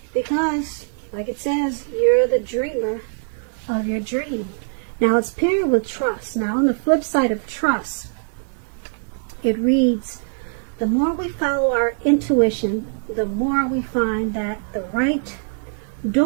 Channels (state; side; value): silent; left; digital silence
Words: Because, like it says, you're the dreamer of your dream. Now it's paired with trust. Now on the flip side of trust, it reads, the more we follow our intuition, the more we find that the right